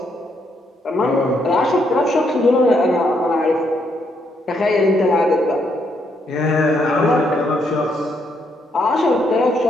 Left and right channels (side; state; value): both; normal; correlation 0.75